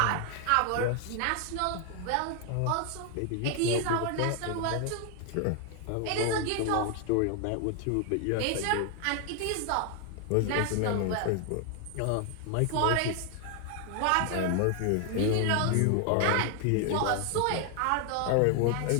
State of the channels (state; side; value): different; both; correlation 0.00